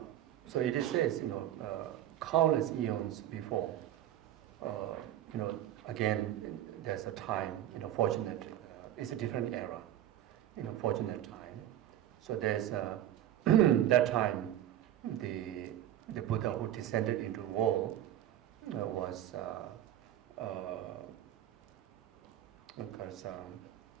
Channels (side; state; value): left; quieter; 12.1 dB